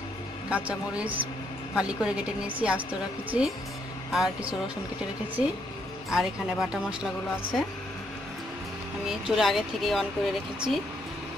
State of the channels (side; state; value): both; normal; correlation 0.74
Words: কাঁচামরিচ ফালি করে কেটে নিয়েছি, আস্ত রেখেছি, আর কিছু রসুন কেটে রেখেছি, আর এখানে বাটা মশলাগুলো আছে। আমি চুলা আগে থেকে অন করে রেখেছি।